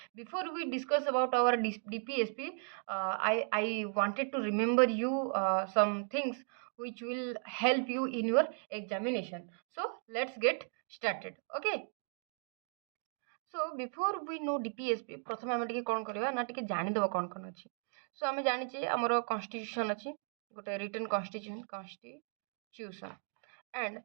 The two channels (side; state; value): left; silent; 54 dB below the other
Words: Before we discuss about our DPSP, I wanted to remember you some things which will help you in your examination. So let's get started. Okay. So before we know DPSP प्रथम आम टे कौन करवा ना टे जानीदेव कौन कौन अच्छी सो आम जाचे आमर कन्स्टिट्यूशन अच्छी गोटे रिटन कन्स्टिट्यूशन एंड